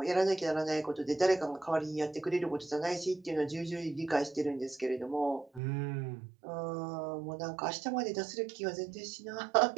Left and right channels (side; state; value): left; drops out; at 5.6 s